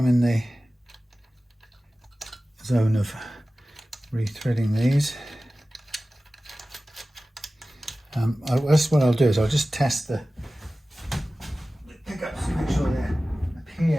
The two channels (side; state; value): both; normal; correlation 0.96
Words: in the zone of rethreading these. That's what I'll do, is I'll just test the pickups to make sure they